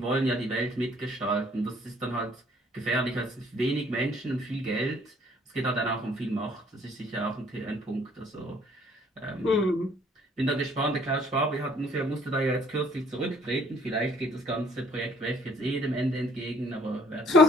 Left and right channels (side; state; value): both; normal; correlation 0.60